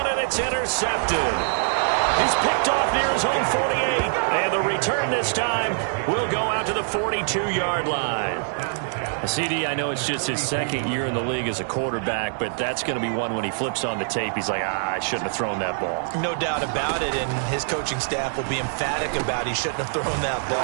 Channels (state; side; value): silent; left; 62 dB below the other